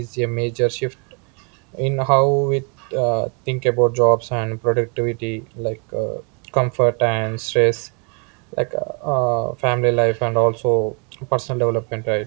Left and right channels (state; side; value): quieter; left; 37.1 dB